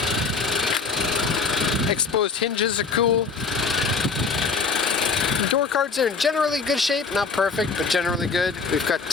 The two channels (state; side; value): quieter; right; 4.7 dB